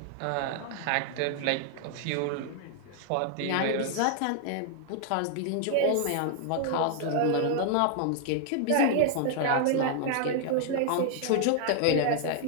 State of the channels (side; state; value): both; different; correlation 0.00